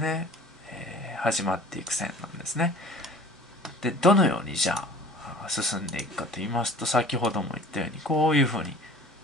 始まっていく線なんですね。で、どのようにじゃあ進んでいくかと言いますと、先ほども言ったように、こういうふうに、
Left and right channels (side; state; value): both; normal; correlation 0.44